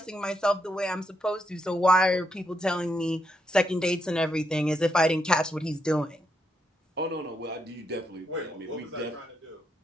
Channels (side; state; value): both; normal; correlation 0.80